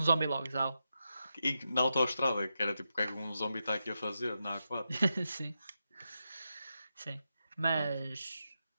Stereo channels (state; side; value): inverted; both; correlation -0.87